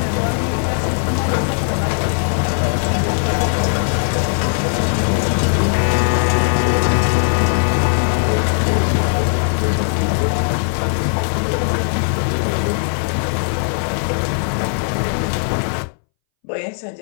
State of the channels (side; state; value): right; silent; 64 dB below the other